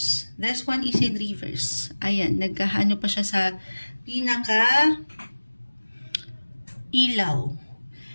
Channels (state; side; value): inverted; both; correlation -1.00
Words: This one is in reverse. Ayan, nagkahano pa siya sa pinaka ilaw.